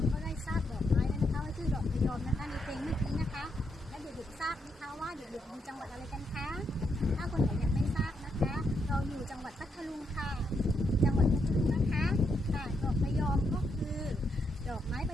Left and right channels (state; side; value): normal; both; correlation 0.79